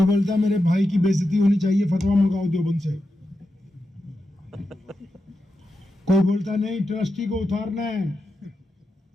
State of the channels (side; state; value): both; normal; correlation 0.89